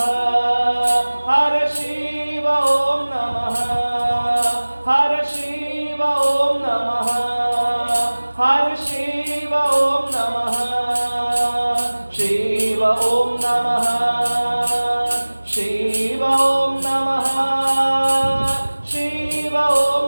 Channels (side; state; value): both; inverted; correlation -1.00